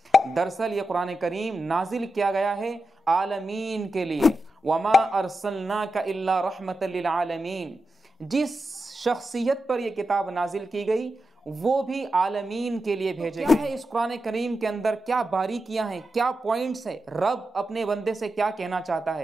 दरअसल ये कुरान करीम नाजिल किया गया है आलमीन के लिए। वमा अरसलनाका इल्ला रहमतल लिल आलमीन। जिस शख्सियत पर यह किताब नाजिल की गई वो भी आलमीन के लिए भेजे गए। क्या है इस कुरान करीम के अंदर, क्या बारीकियां हैं, क्या पॉइंट्स है, रब अपने बंदे से क्या कहना चाहता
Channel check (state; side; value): normal; both; correlation 0.89